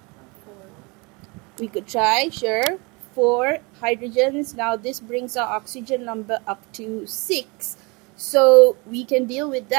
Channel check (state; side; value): quieter; left; 28.3 dB